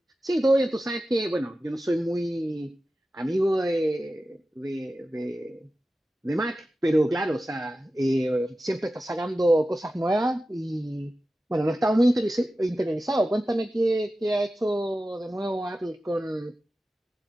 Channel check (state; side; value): normal; both; correlation 0.94